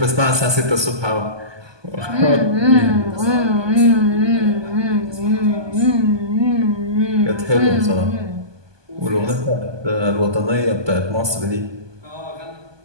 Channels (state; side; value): late; left; 1.2 ms